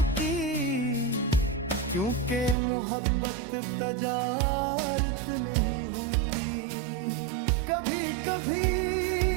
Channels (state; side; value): drops out; left; at 2.6 s